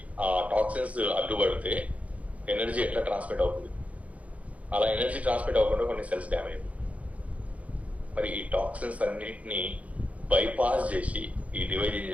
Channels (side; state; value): left; late; 0.067 ms